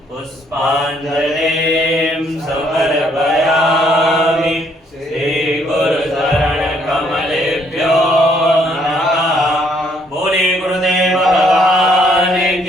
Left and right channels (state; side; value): normal; both; correlation 0.67